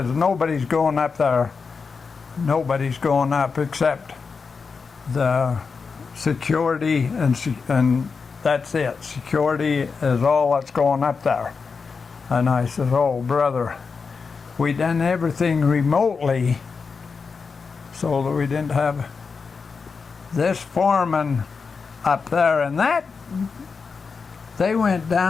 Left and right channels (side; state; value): right; quieter; 5.1 dB